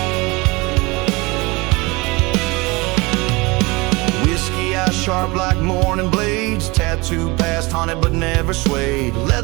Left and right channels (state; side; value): quieter; left; 24.6 dB